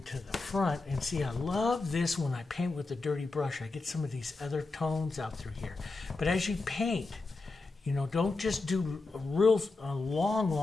the front. And see, I love this when I paint with a dirty brush. I get some of these other tones out through here. But as you paint, you know, don't just do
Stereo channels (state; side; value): quieter; right; 3.6 dB